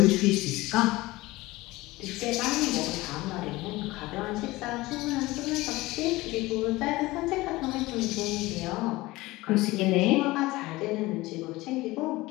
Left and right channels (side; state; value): right; quieter; 19.8 dB